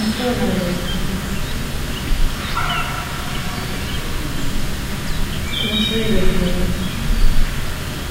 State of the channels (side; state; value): both; identical; correlation 1.00